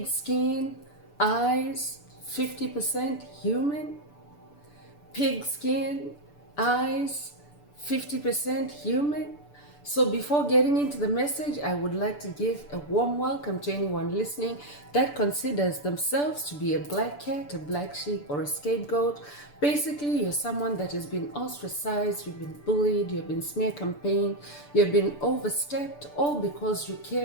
skin, eyes, 50% human. Pig skin, eyes, 50% human. So before getting into the message, I would like to give a warm welcome to anyone listening that considers themselves to be a black cat, a black sheep, or a scapegoat. Basically, you're someone that has been ostracized, you've been bullied, you've been smear campaigned, you've been overstepped, all because you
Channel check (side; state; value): right; late; 6.9 ms